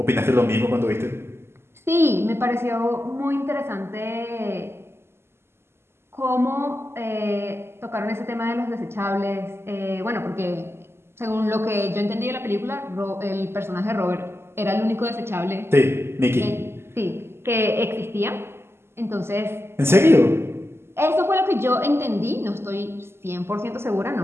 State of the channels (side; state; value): left; late; 0.12 ms